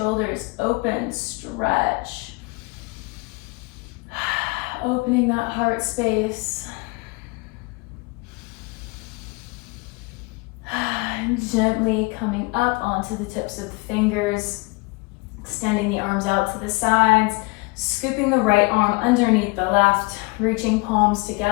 open, stretch. Opening that heart space. And gently coming up onto the tips of the fingers, extending the arms out to the sides, scooping the right arm underneath the left, reaching palms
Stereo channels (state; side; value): quieter; right; 26.9 dB